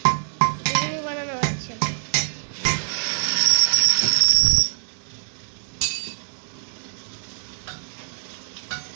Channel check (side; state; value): left; silent; 63 dB below the other